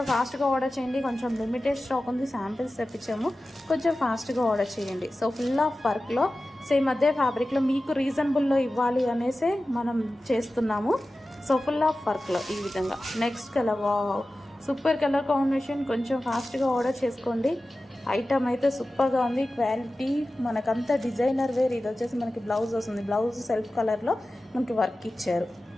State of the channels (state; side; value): normal; both; correlation 0.95